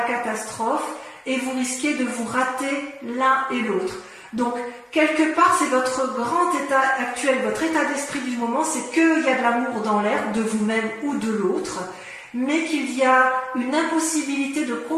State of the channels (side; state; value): both; identical; correlation 1.00